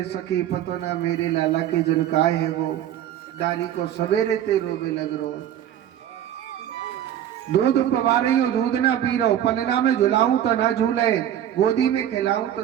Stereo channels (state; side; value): quieter; left; 10.9 dB